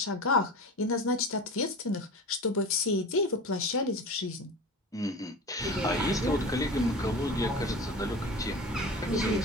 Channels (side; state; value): both; normal; correlation 0.32